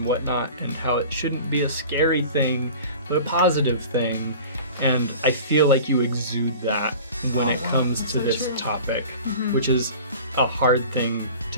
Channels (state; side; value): inverted; both; correlation -0.40